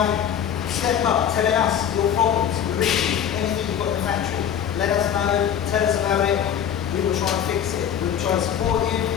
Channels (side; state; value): right; quieter; 9.0 dB